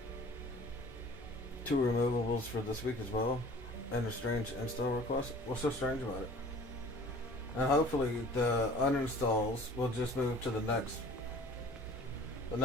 Two removables for this week as well, and a strange install request. What's so strange about it? And hopefully the uninstalls will just move to the next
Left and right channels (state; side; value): normal; both; correlation 0.47